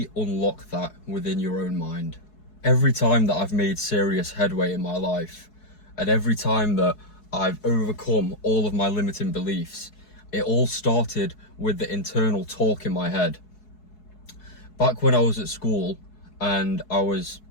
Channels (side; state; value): right; late; 4.7 ms